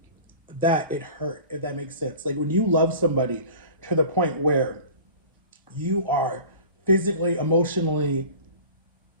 that it hurt, if that makes sense. Like when you love somebody to the point where you are physically, emotionally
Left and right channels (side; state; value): both; inverted; correlation -0.41